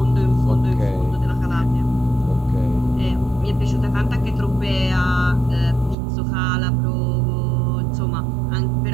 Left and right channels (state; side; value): drops out; left; at 6.0 s